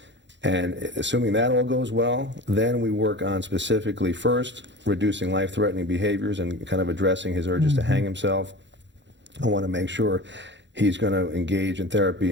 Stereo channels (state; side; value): late; left; 0.52 ms